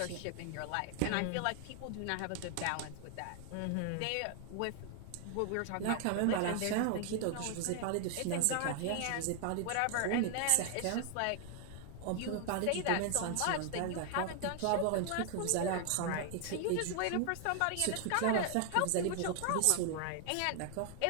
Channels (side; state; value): both; different; correlation 0.00